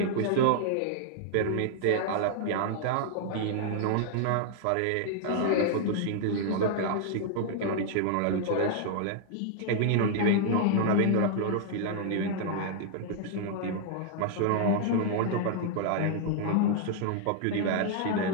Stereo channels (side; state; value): both; different; correlation -0.01